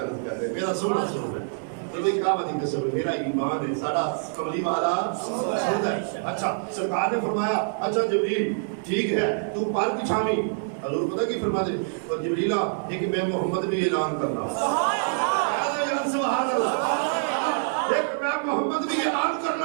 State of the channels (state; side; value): silent; left; digital silence